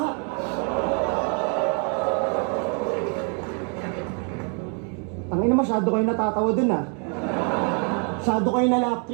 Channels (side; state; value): left; quieter; 39.8 dB